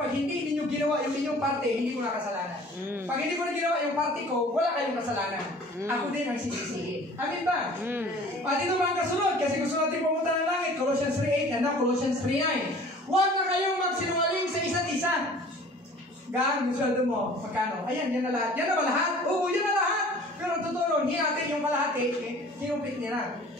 hindi ninyo ginawa yung inyong parte, hindi ko na kasalanan. Pag hindi ko na ginawa yung parte ko, wala kayong kasalanan. Ako din ang sisisihin. Amin ba? At ito mga kasunod, kasi gusto natin pumunta ng langit, Colossians 3:8 and now Colossians 3:9. Huwag na kayong magsinungaling sa isa't isa. Gaan, yung sweldo mo, magkano? Ayan, yan na lahat. Yan na ba lahat? Oo, yan na lahat. Pero totoo, hindi natin yung kalahati, kinupit niya na.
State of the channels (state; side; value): normal; both; correlation 0.48